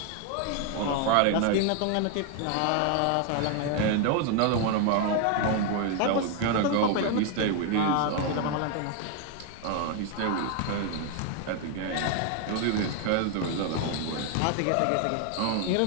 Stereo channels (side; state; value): both; different; correlation 0.01